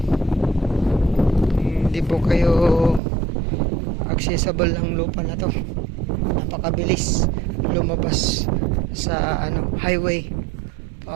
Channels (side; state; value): left; drops out; at 3.0 s